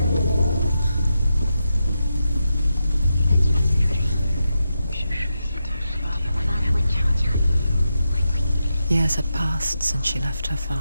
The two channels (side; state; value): both; inverted; correlation -0.87